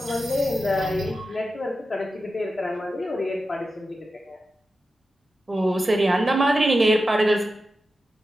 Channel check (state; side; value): normal; both; correlation 0.91